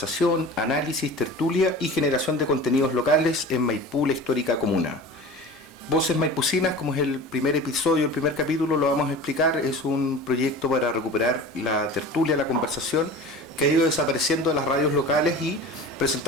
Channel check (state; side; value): normal; both; correlation 0.37